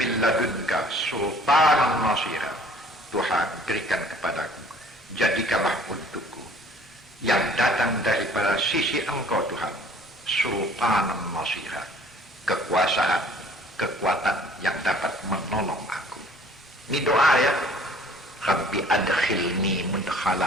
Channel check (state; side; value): normal; both; correlation 0.53